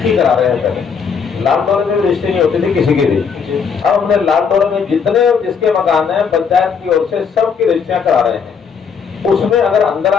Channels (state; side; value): quieter; right; 6.2 dB